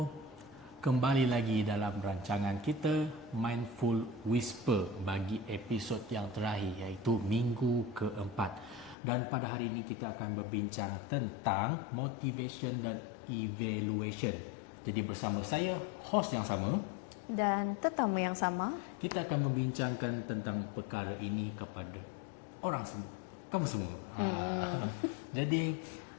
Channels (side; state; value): right; drops out; at 9.0 s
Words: kembali lagi dalam rancangan kita Mindful Whisper bagi episod yang terakhir iaitu minggu keempat. Dan pada hari ini kita akan berbincang tentang motivation dan evaluation. Jadi bersama saya, host yang sama dan tetamu yang sama, kita akan membincangkan tentang perkara ini kepada orang semua, kamu semua. Jadi,